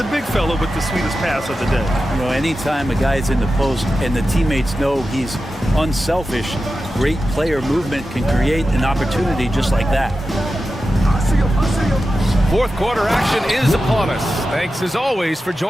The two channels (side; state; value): both; normal; correlation 0.92